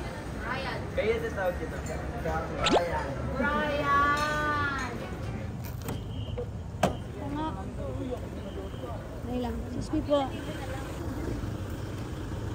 Ryan. Kaya ito tawag dito. Ryan. Dahil lang. Excuse me po.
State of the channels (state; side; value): identical; both; correlation 1.00